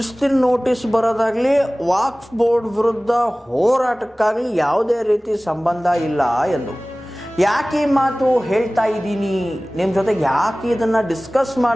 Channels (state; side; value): normal; both; correlation 0.98